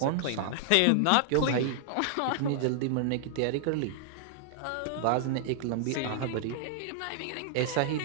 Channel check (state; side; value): different; both; correlation -0.01